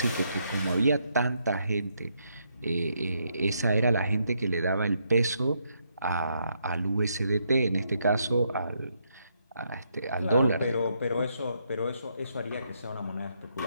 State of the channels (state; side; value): inverted; both; correlation -0.77